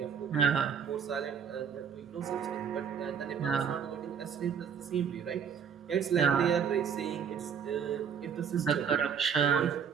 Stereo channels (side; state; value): left; quieter; 7.1 dB